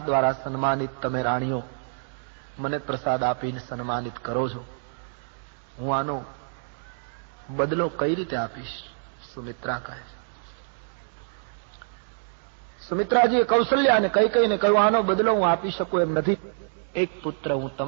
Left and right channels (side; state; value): left; silent; digital silence